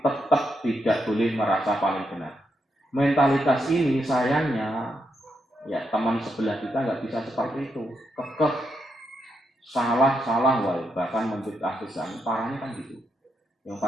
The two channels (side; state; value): both; normal; correlation 0.81